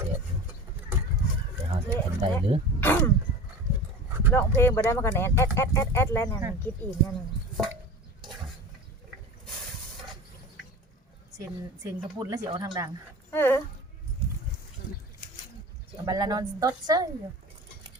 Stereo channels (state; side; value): normal; both; correlation 0.34